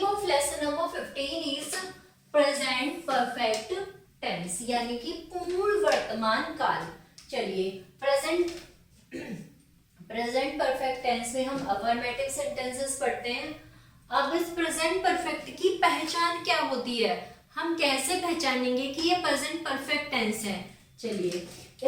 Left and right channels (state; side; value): identical; both; correlation 1.00